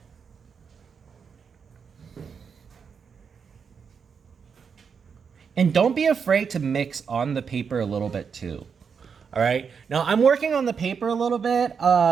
And don't be afraid to mix on the paper a little bit too. All right. Now I'm working on the paper a little bit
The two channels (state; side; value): quieter; left; 6.3 dB